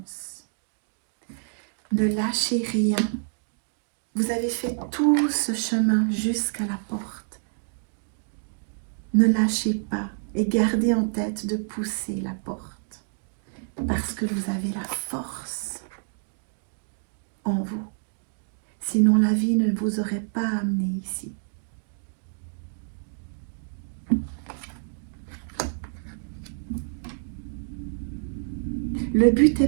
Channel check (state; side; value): silent; left; digital silence